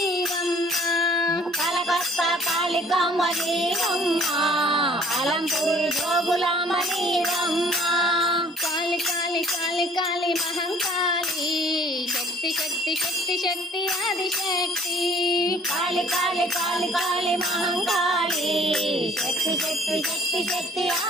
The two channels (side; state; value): both; normal; correlation 0.55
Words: కలకత్తా కాళికాంబ నీవమ్మ అలంపూరి జోగులాంబ నీవమ్మ కాళి కాళి కాళి కాళి మహంకాళి శక్తి శక్తి శక్తి శక్తి ఆదిశక్తి కాళి కాళి కాళి కాళి మహంకాళి శక్తి శక్తి శక్తి శక్తి